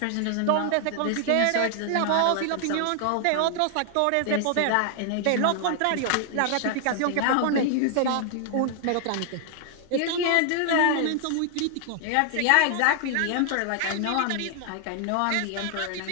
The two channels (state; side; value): different; both; correlation 0.00